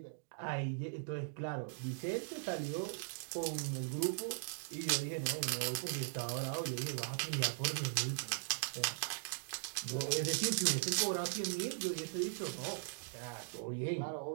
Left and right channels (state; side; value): silent; left; digital silence